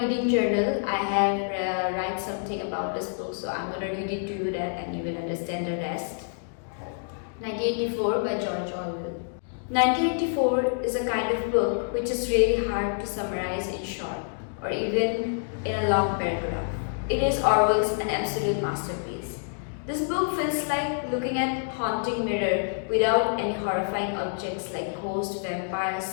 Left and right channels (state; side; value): silent; right; digital silence